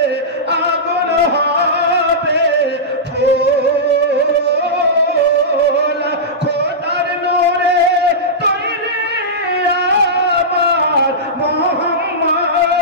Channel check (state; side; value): normal; both; correlation -0.14